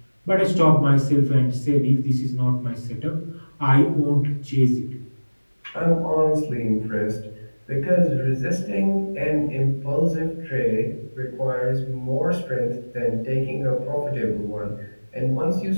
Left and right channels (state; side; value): inverted; both; correlation -1.00